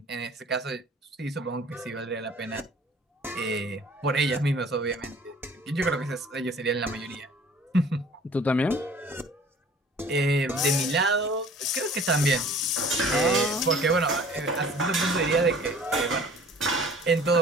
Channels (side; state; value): both; normal; correlation 0.50